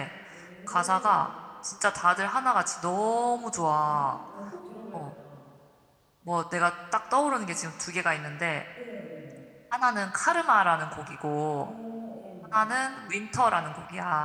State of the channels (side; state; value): both; identical; correlation 1.00